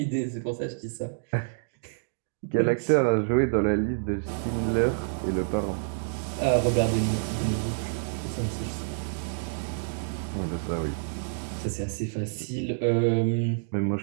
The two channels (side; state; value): left; silent; digital silence